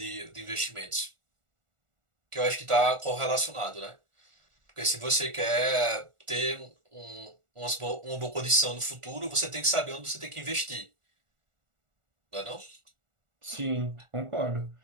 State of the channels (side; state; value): left; late; 1.4 ms